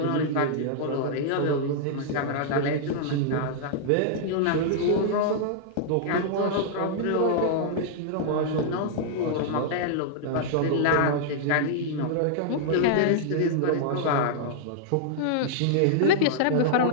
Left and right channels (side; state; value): both; different; correlation -0.01